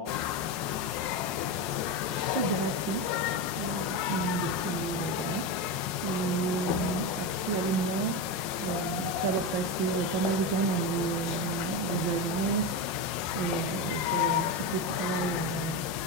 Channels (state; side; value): late; left; 5.6 ms